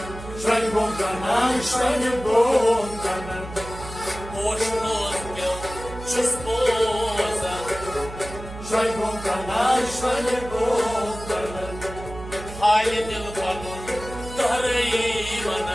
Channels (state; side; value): noise; right; hum, 12 dB below the sound